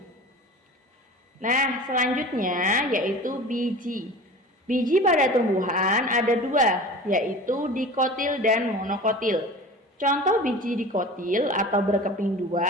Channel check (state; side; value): normal; both; correlation 0.37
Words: Nah, selanjutnya yaitu biji. Biji pada tumbuhan ada dua, yaitu dikotil dan monokotil. Contoh biji dikotil atau berkeping